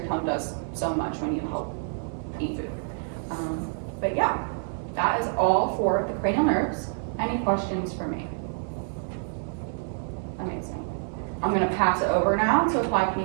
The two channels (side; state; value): left; silent; 57 dB below the other